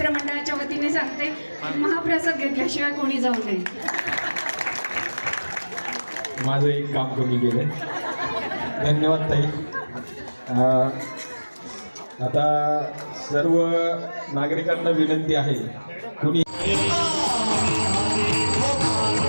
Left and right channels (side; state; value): both; inverted; correlation -1.00